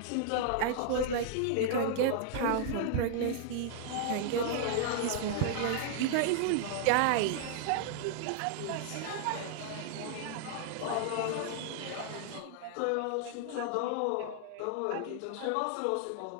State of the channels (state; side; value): different; both; correlation -0.01